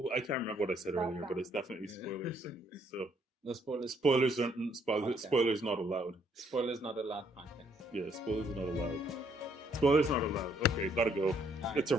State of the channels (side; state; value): both; normal; correlation 0.68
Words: I can't remember what I said earlier, but it's definitely spoilers. So No spoilers. spoilers aren't Okay. spoilers not allowed. Spoilers not allowed podcast. Yeah, spoilers are not allowed. Spoilers not allowed. Okay, gotta go. All right. It's a